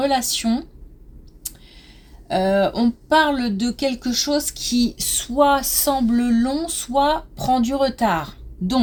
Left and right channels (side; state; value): both; identical; correlation 1.00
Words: On parle de quelque chose qui soit semble long, soit prend du retard.